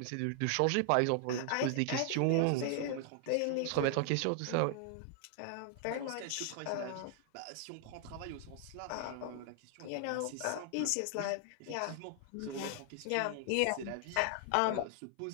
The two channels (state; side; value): different; both; correlation 0.00